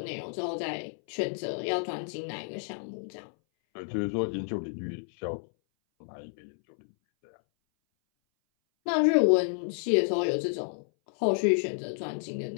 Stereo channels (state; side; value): silent; right; 58 dB below the other